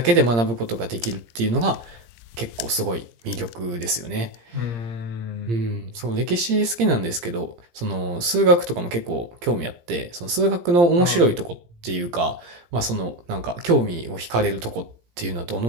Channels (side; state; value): left; late; 17 ms